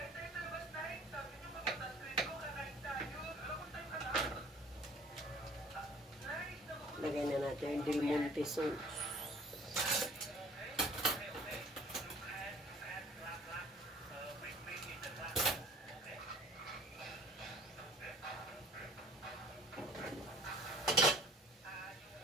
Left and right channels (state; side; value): normal; both; correlation 0.50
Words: Lagay na natin yung Del Monte sauce.